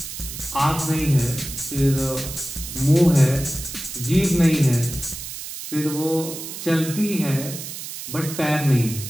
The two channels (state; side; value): noise; right; hiss, 9 dB below the sound